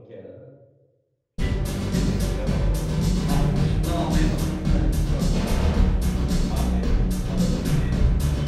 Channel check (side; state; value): both; identical; correlation 1.00